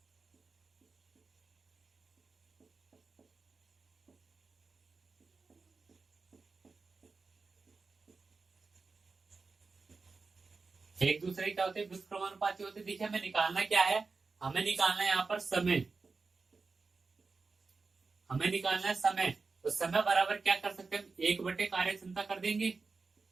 एक दूसरे क्या होते हैं, व्युत्क्रमानुपाती होते हैं। देखिए हमें निकालना क्या है, हमें निकालना है यहाँ पर समय, हमें निकालना है समय। तो समय बराबर क्या कर सकते हैं, 1 बटे कार्य क्षमता कर देंगे,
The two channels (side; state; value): left; quieter; 4.3 dB